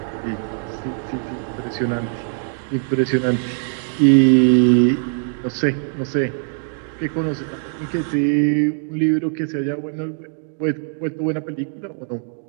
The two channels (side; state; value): left; silent; digital silence